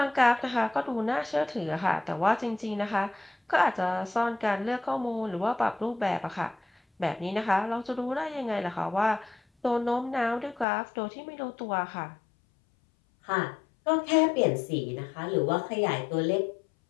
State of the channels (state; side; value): drops out; right; at 10.7 s